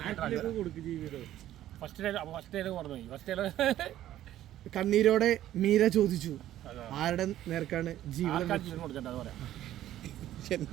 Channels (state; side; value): quieter; left; 12.9 dB